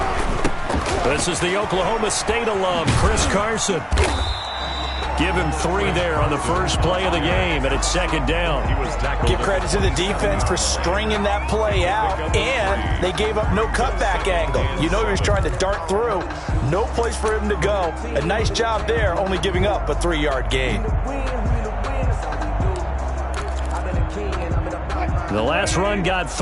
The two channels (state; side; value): identical; both; correlation 1.00